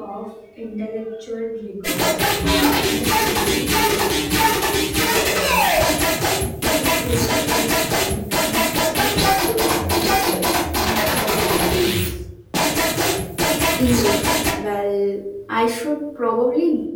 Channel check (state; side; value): identical; both; correlation 1.00